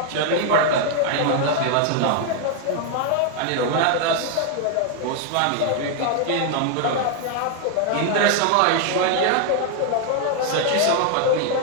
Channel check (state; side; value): different; both; correlation 0.00